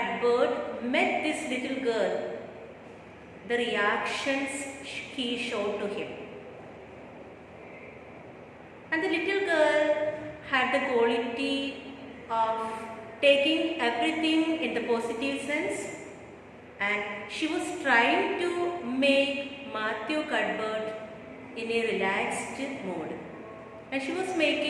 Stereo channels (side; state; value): both; identical; correlation 1.00